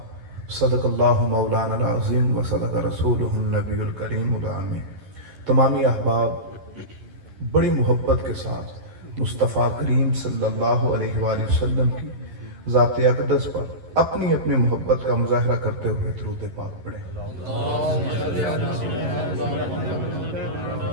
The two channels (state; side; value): late; left; 11 ms